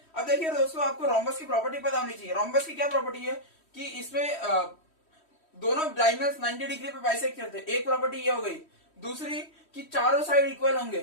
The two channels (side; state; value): right; late; 3.1 ms